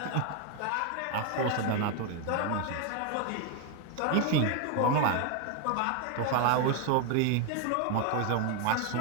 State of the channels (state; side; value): different; both; correlation 0.01